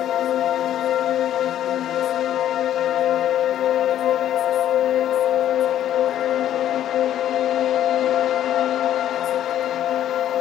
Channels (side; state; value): right; quieter; 11.4 dB